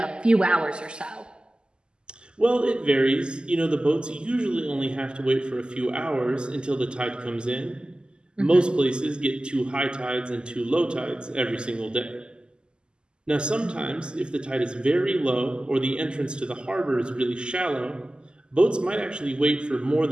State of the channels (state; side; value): late; left; 0.048 ms